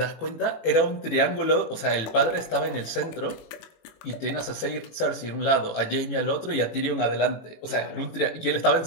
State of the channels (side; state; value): right; late; 18 ms